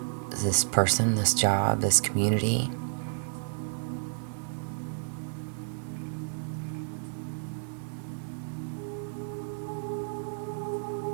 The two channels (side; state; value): left; silent; 56 dB below the other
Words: this person, this job, this community.